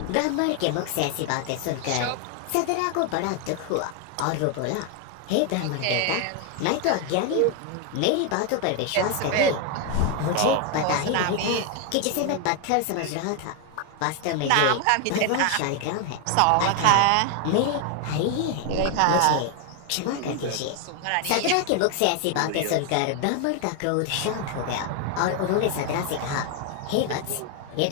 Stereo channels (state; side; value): different; both; correlation 0.01